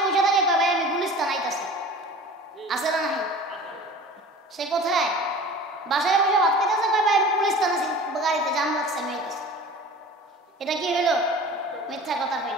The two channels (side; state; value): both; normal; correlation 0.40